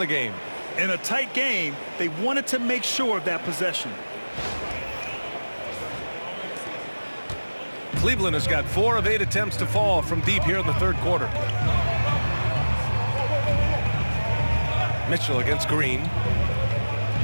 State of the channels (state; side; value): inverted; both; correlation -1.00